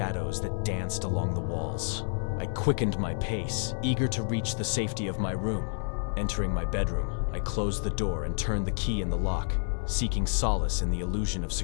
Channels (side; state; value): right; silent; 58 dB below the other